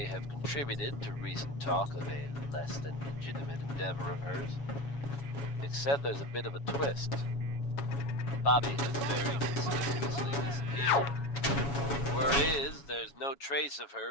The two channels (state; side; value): late; right; 7.2 ms